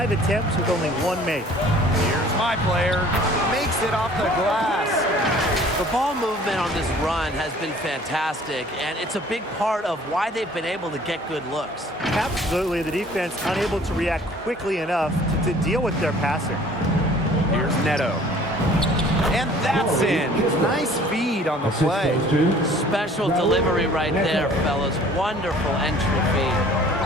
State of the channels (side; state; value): both; normal; correlation 0.52